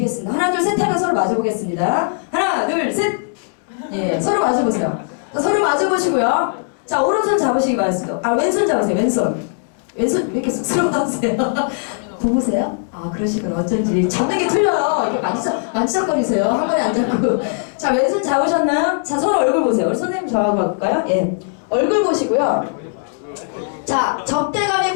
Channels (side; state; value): right; silent; 67 dB below the other